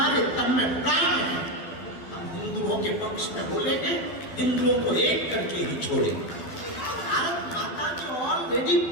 तन में प्राण है हम हिंदुओं के पक्ष में बोलेंगे, हिंदुओं को एक करके ही छोड़ेंगे। भारत माता के ऑलरेडी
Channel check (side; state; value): right; late; 12 ms